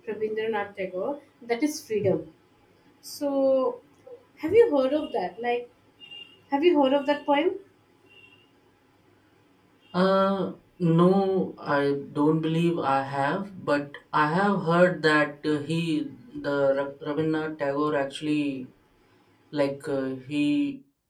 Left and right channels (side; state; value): both; identical; correlation 1.00